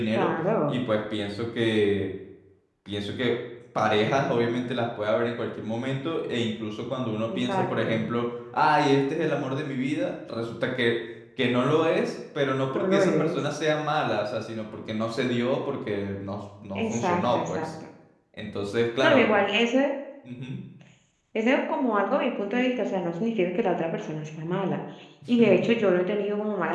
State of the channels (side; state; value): both; identical; correlation 1.00